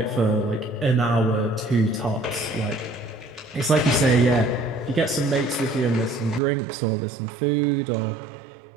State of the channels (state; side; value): drops out; left; at 6.4 s